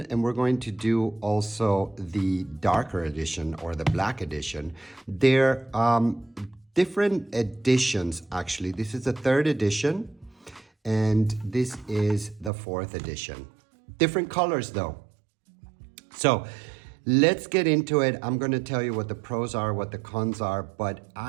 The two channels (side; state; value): left; drops out; at 12.5 s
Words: and we're going to do also the darker edition or the black edition. They're different editions actually. This is the third edition and this is the fourth edition. Different colors though. So let's get into it. I'm going to tell you what the pros are, what the cons are, but